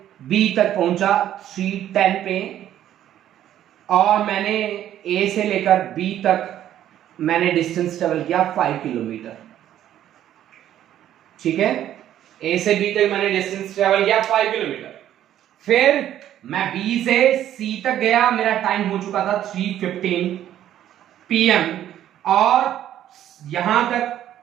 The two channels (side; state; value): left; quieter; 11.6 dB